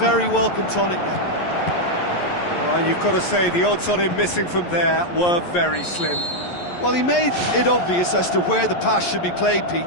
welcome tonic now. Well, you've got to say the odds on him missing from there were very slim. Well, he made it obvious as to where the pass should be played,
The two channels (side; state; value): right; late; 11 ms